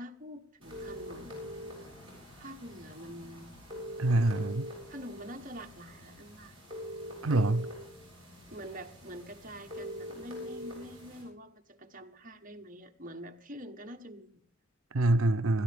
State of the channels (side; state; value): both; normal; correlation 0.68